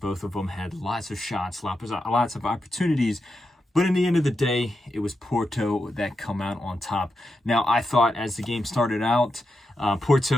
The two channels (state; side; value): normal; both; correlation 0.87